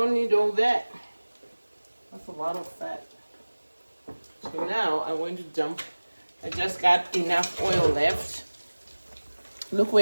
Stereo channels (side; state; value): both; inverted; correlation -1.00